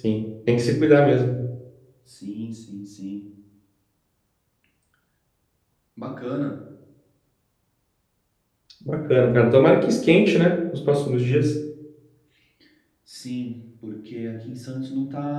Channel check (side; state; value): both; identical; correlation 1.00